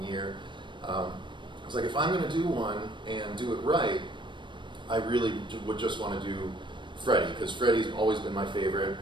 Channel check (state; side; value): late; left; 0.23 ms